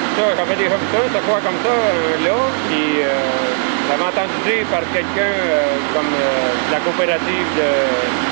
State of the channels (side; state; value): left; silent; 61 dB below the other